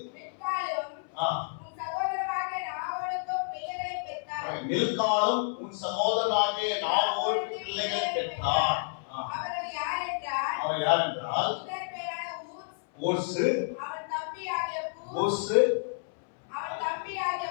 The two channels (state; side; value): silent; right; 58 dB below the other